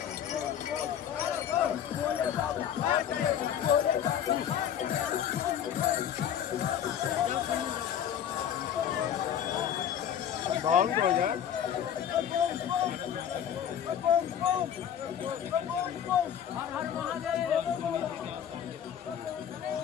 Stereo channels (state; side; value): quieter; right; 9.4 dB